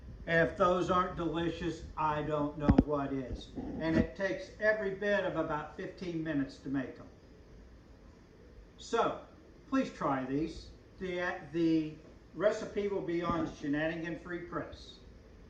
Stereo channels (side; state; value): both; identical; correlation 1.00